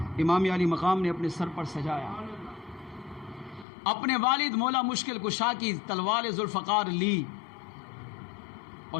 امام علی مقام نے اپنے سر پر سجایا، اپنے والد مولا مشکل کشا کی تلوار ذوالفقار لی اور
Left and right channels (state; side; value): drops out; right; at 3.7 s